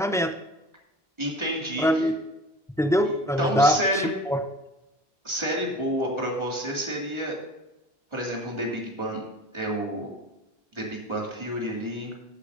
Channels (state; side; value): normal; both; correlation 0.41